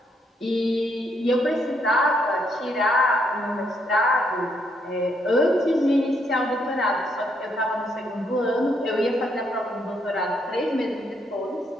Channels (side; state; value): both; normal; correlation 0.74